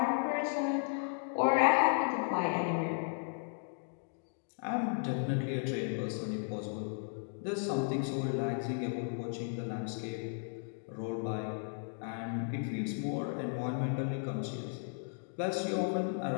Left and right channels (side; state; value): right; silent; digital silence